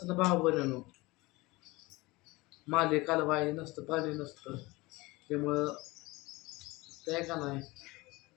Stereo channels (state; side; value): quieter; right; 22.2 dB